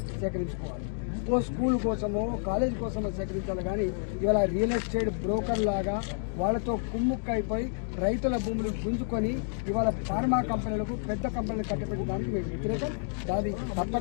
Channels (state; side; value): silent; right; digital silence